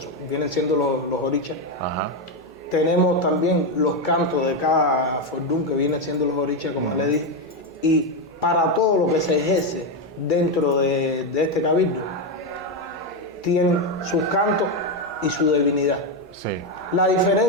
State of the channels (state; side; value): normal; both; correlation 0.08